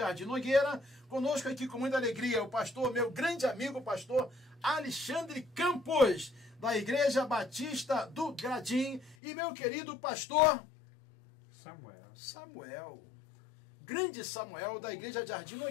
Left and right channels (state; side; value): drops out; right; at 9.2 s